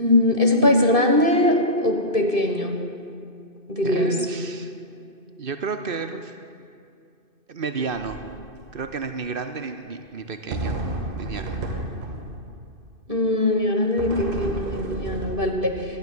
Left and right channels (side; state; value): left; late; 2.6 ms